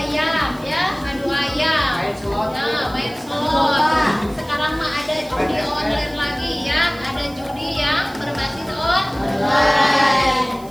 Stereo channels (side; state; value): right; noise; hiss, 23 dB below the sound